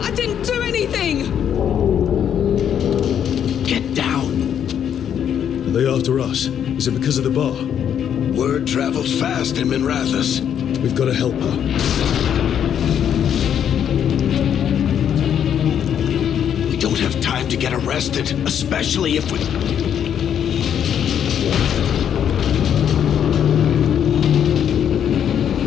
I didn't do anything! Get down. Are they after us? Is it because of the bar? Word travels fast in Minrathous. We've got to help her. We don't have time to get arrested, especially if we...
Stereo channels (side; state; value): right; quieter; 9.0 dB